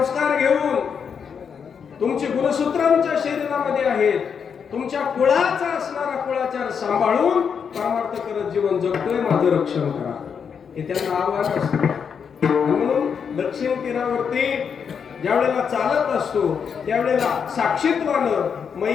घेऊन तुमची गुणसूत्रांच्या शरीरामध्ये आहेत, तुमच्या कुळाचा असणारा कुळाचार सांभाळून परमार्थ करत जीवन जगतोय, माझं रक्षण करा, हे त्यांना आव्हान असतं. म्हणून दक्षिण तीरावरती ज्यावेळेला चालत असतो त्यावेळेला साक्षीत्वानं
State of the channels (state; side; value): quieter; right; 6.8 dB